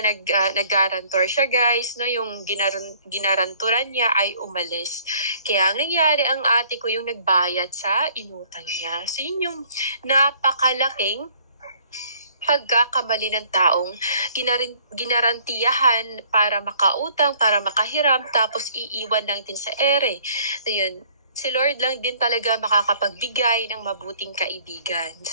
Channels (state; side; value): inverted; both; correlation -0.58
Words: siya, guys, no, yung ginaranturan niya ay umalis. Kaya ang nangyari, ang ate ko yung nagbayad sa inutang niya. So yun yung napakalaking pagkakamali ng taong ginarantiyahan para makautang, para makahiram, tapos iiwan lang din sa ere. So yun, si Lord lang din talaga makakapagbigay ng mabuting kaibigan.